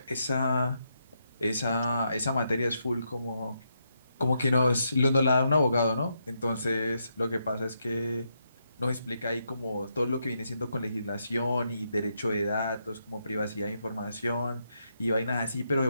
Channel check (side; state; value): both; inverted; correlation -0.80